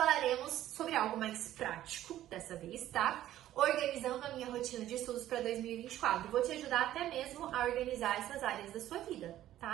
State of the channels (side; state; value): left; quieter; 13.2 dB